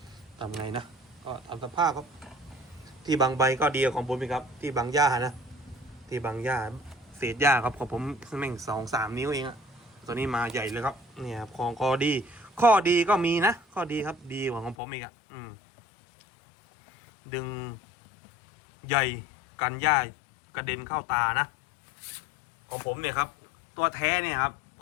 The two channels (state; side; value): drops out; right; at 14.8 s